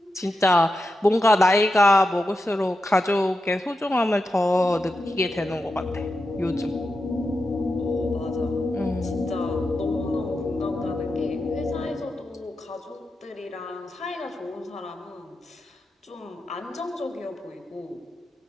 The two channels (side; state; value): both; normal; correlation 0.89